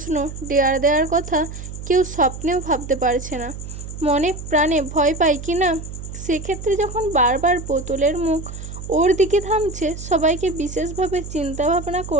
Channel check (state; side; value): noise; right; hum, 10 dB below the sound